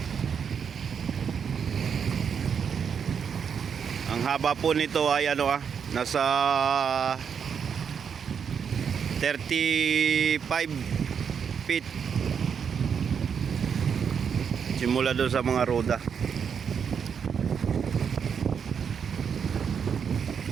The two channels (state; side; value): quieter; left; 7.0 dB